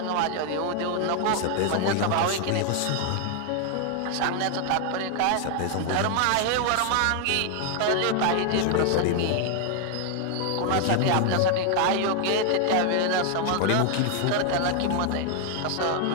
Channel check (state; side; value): different; both; correlation 0.00